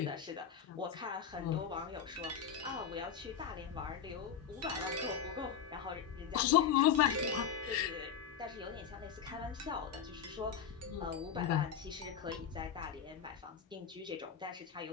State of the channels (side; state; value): right; quieter; 7.8 dB